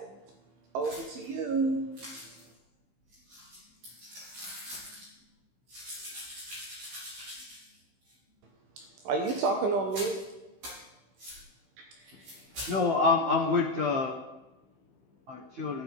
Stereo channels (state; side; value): late; left; 15 ms